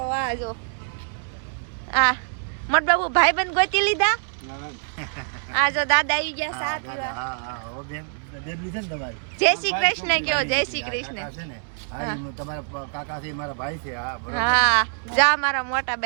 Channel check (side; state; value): left; silent; 62 dB below the other